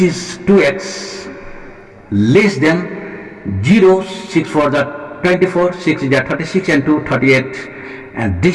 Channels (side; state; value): both; identical; correlation 1.00